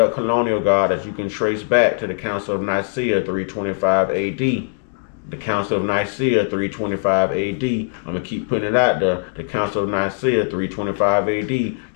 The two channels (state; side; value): silent; right; digital silence